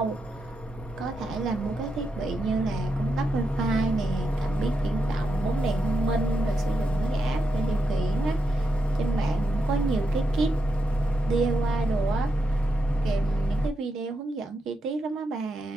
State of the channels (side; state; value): both; normal; correlation 0.84